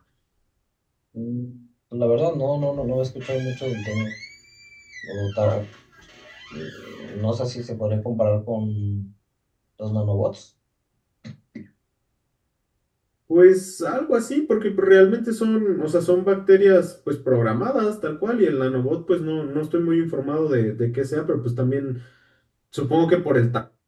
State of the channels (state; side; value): identical; both; correlation 1.00